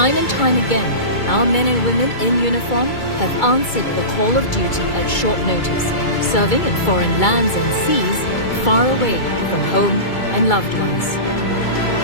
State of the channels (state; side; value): late; right; 2.3 ms